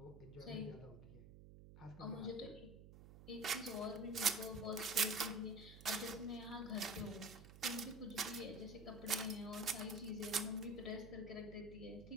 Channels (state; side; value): noise; right; hum, 15 dB below the sound